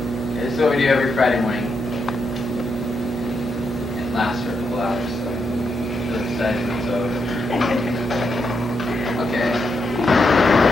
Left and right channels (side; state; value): both; normal; correlation 0.81